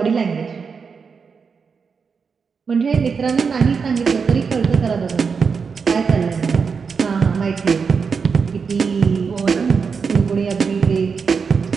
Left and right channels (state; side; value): quieter; left; 5.6 dB